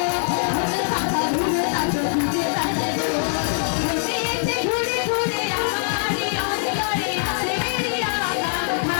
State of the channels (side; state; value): right; silent; 58 dB below the other